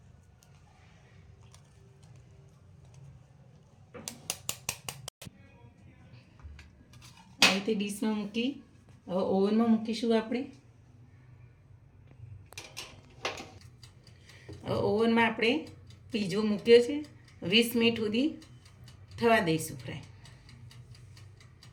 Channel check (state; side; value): identical; both; correlation 1.00